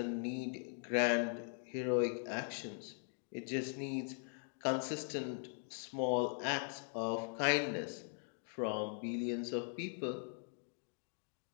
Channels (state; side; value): silent; right; 51 dB below the other